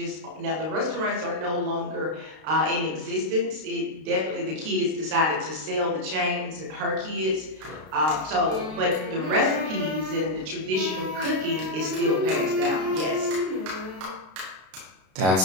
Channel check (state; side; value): late; left; 32 ms